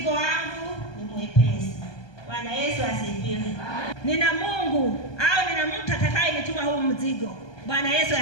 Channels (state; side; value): late; right; 1.2 ms